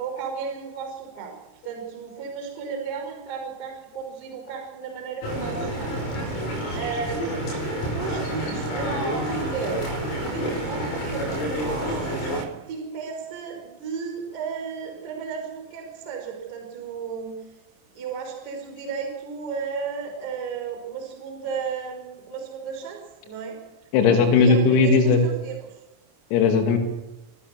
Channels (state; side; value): late; right; 26 ms